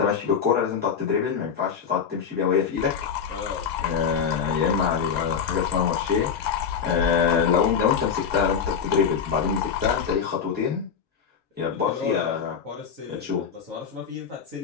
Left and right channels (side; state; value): right; quieter; 6.9 dB